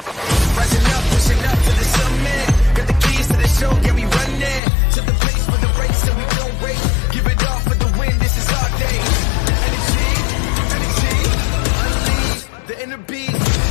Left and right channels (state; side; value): drops out; right; at 4.6 s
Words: Rising up, pushing up to the summit. Got the keys to the show, yeah, we run it. To the place for the race, and we don't wait. Give it all for the win, this is our day. Energy, unleash the inner beast.